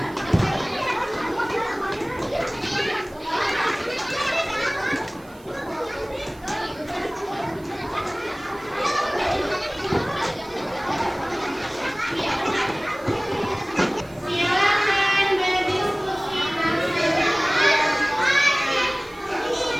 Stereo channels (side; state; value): right; noise; hiss, 26 dB below the sound